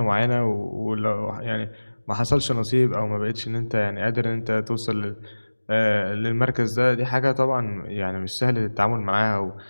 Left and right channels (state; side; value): inverted; both; correlation -1.00